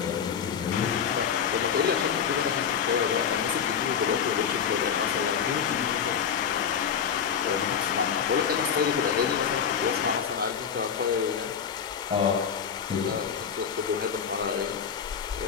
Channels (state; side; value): quieter; right; 7.4 dB